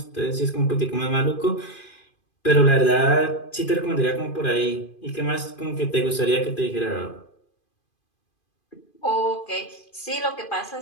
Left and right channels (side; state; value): right; late; 2.5 ms